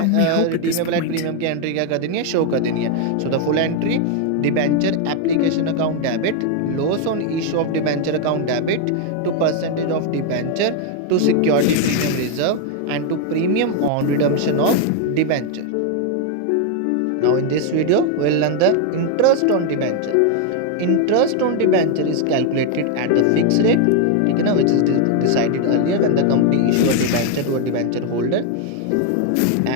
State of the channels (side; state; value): both; different; correlation 0.01